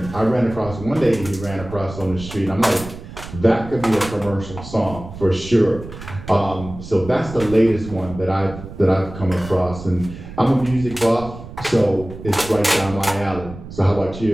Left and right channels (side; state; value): right; noise; rumble, 13 dB below the sound